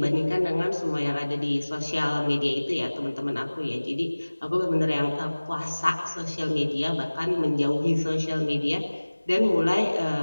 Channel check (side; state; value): both; inverted; correlation -1.00